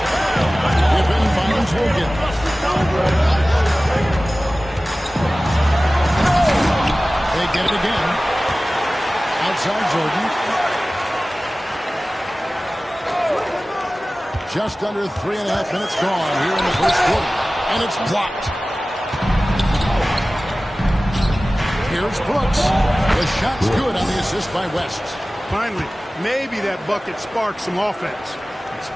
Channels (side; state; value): both; normal; correlation 0.97